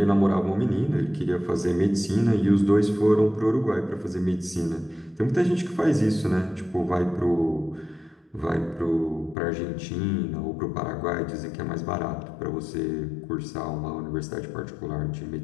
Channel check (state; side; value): drops out; right; at 9.3 s